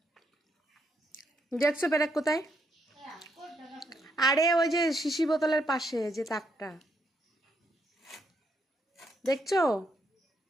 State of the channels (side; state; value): both; normal; correlation 0.76